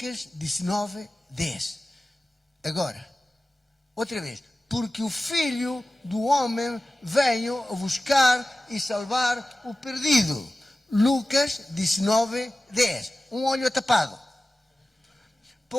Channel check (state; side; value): normal; both; correlation 0.96